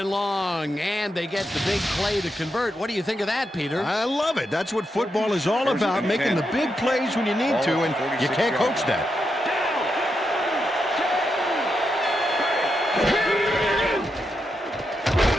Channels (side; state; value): both; normal; correlation 0.84